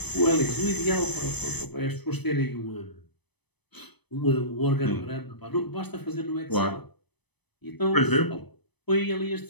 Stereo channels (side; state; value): right; late; 0.99 ms